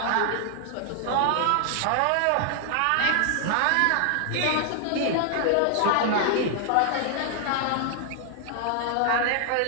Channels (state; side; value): different; both; correlation 0.00